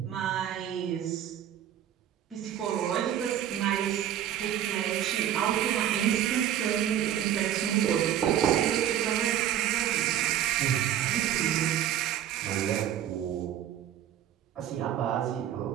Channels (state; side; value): quieter; left; 10.8 dB